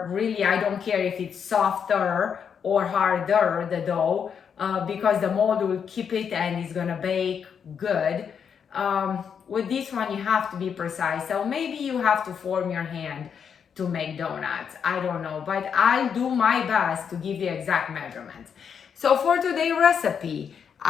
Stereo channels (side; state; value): right; quieter; 7.2 dB